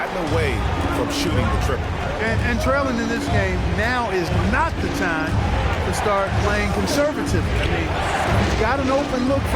away from shooting the triple. And trailing in this game, now is not the time to start playing conservative. I mean, you've got an open look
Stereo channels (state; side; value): identical; both; correlation 1.00